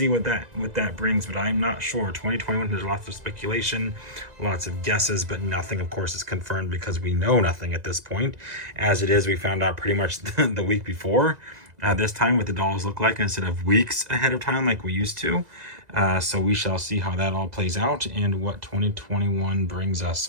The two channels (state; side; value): late; left; 2.0 ms